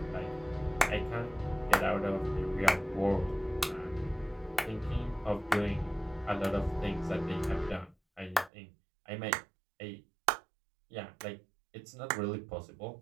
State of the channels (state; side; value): drops out; left; at 8.5 s